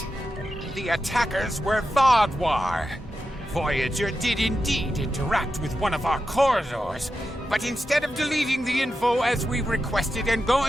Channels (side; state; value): both; normal; correlation 0.89